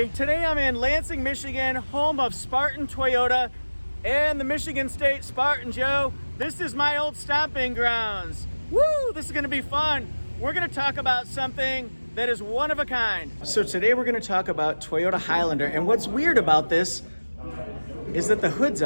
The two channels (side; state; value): both; inverted; correlation -1.00